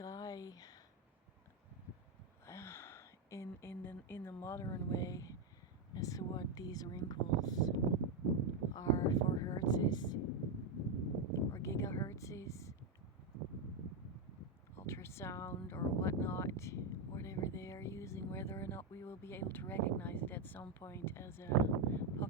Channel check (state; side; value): quieter; left; 3.2 dB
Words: in the modern way as to what these wrinkles are for hertzes or gigahertzes, ultrasound or whatnot, whatever they are using, whether or not we will be able to recognize it at some point as a